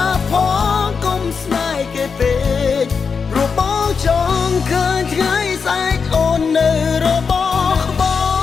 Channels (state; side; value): quieter; right; 5.6 dB